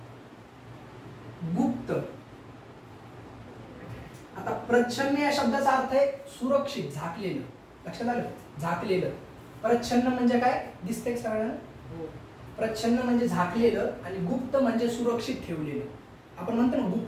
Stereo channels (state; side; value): identical; both; correlation 1.00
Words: गुप्त. आता प्रच्छन्न या शब्दाचा अर्थ आहे सुरक्षित, झाकलेलं. लक्षात आलं? झाकलेलं. प्रच्छन्न म्हणजे काय, दिसतंय सगळ्यांना? प्रच्छन्न म्हणजे झाकलेलं, आणि गुप्त म्हणजे सुरक्षित ठेवलेलं. आपण म्हणतो ना